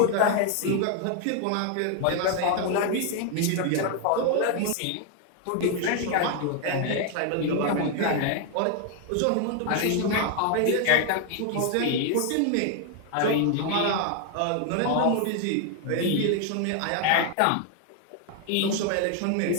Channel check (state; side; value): different; both; correlation 0.00